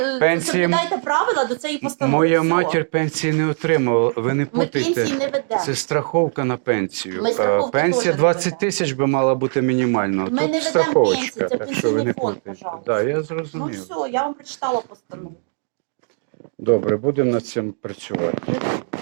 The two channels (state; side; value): silent; left; digital silence